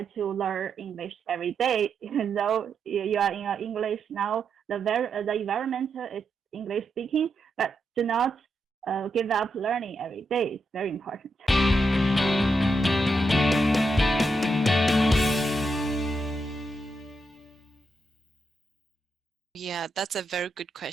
to learn English every day. Even though you are in English now, the environment is English speaking, but do not give up learning every day. It's very important. Yeah, that's a very good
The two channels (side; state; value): both; normal; correlation 0.83